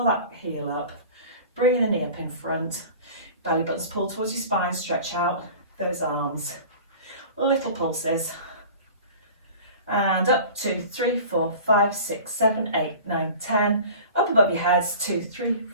that heel up, bringing the knee up in front, belly buttons pull towards your spine, stretch out those arms, little pulses, and up. 2, 3, 4, 5, 6, 7, 8, 9, 10. Up above your heads. 2, 3,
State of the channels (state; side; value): inverted; both; correlation -0.40